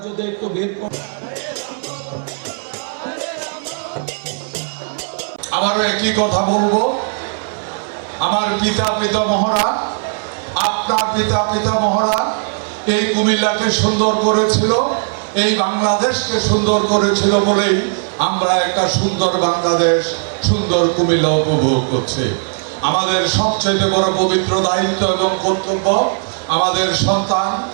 যদি একটু ভিড় করেন। আবারও একই কথা বলবো, আমার পিতা পিতামহরা, আপনার পিতা পিতামহরা এই কুমিল্লাকে সুন্দর করেছিল, এই বাংলাদেশকে সুন্দর করেছিল বলেই আমরা একটা সুন্দর বাংলাদেশ, সুন্দর কুমিল্লা উপভোগ করছি। আমাদের সবচেয়ে বড় পবিত্র দায়িত্ব এবং কর্তব্য আমাদের সন্তান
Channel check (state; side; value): silent; left; 58 dB below the other